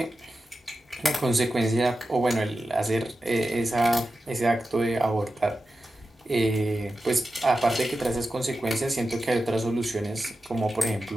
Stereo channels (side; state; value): both; normal; correlation 0.92